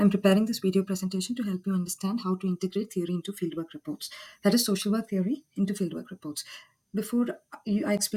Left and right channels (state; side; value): identical; both; correlation 1.00